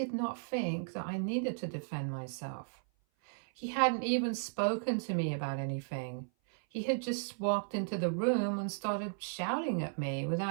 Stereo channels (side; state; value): left; silent; 54 dB below the other